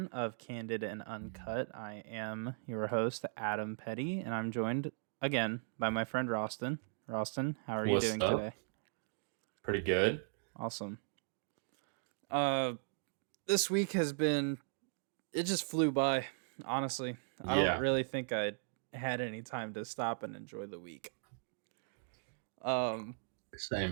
of Candid and Uncut. I am your host, Adam Petty, and I'm joined again by my friend Roston. Roston, how are you What's doing up? today? Pretty good. Awesome. Uh, this week has been, it just flew by, honestly. I don't Yeah, really think I had any time to stop and enjoy the week. Um,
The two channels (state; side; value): silent; left; digital silence